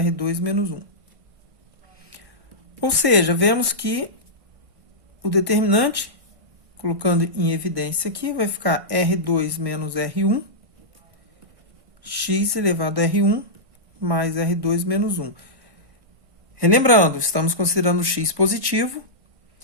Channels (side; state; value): left; late; 1.6 ms